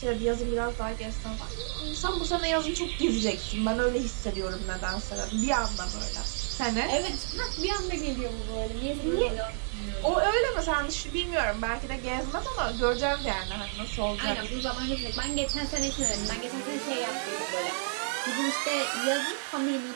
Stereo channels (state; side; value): silent; left; 58 dB below the other